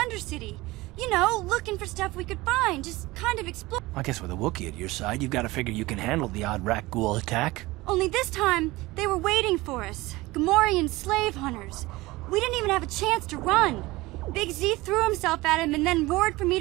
You know, looking for stuff we could find, just kind of explore. I guess with a Wookiee at your side, you've got to figure you can handle the odd Rakghoul attack. Only this time, they were waiting for us. Gamorrean slave hunters. We didn't even have a chance to run. Big Z threw himself at him and then roared for me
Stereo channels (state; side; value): quieter; left; 20.3 dB